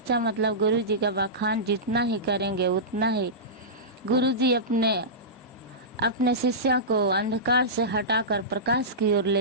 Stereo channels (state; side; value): normal; both; correlation -0.16